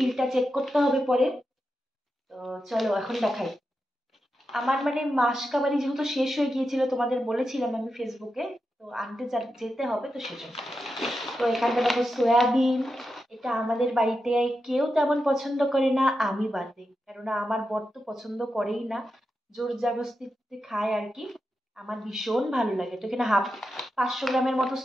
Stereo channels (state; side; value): normal; both; correlation 0.89